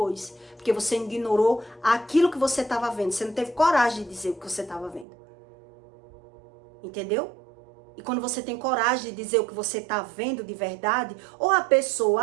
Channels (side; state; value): left; drops out; at 5.1 s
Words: Porque você ignorou aquilo que você estava vendo. Você não teve coragem de dizer o que você estava vendo. Entendeu? E quando você tem coragem de dizer o que você está vendo de verdade, ou a